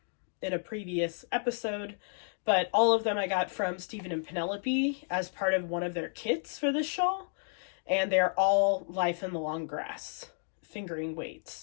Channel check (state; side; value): silent; right; 57 dB below the other